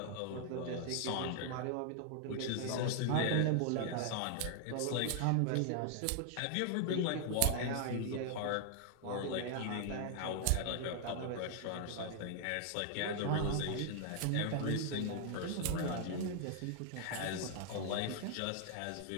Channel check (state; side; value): different; both; correlation 0.00